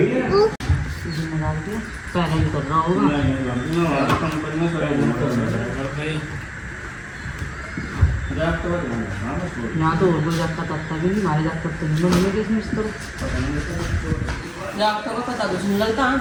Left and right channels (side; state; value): both; identical; correlation 1.00